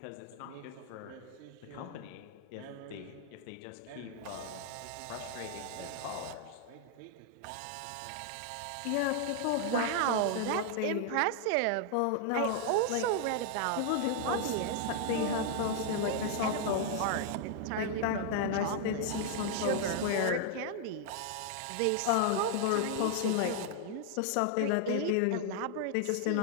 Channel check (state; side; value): different; both; correlation 0.00